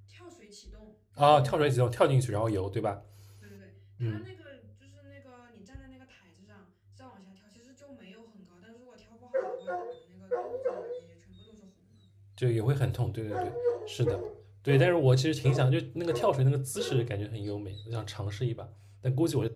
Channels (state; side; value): identical; both; correlation 1.00